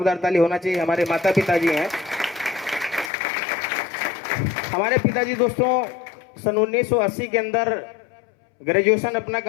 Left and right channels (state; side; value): drops out; right; at 3.1 s